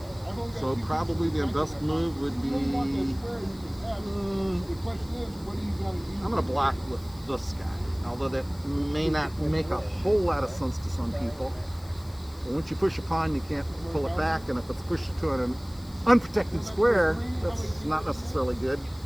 So probably the best move would be, I'm going to block with this guy, although that may not make a whole lot of sense to some people. But once you push a pawn, you can't pull it back, and if it's pushed to an unprotected square, that's not necessarily good.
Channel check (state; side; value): noise; left; hiss, 24 dB below the sound